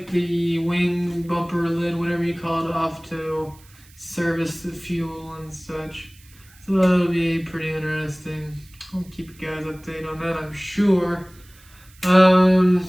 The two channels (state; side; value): noise; right; hiss, 26 dB below the sound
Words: the wing bumper lid, whatever you call it, off to service the fuel and such. So that'll be pretty interesting. I'll keep you guys updated on that, I'm sure.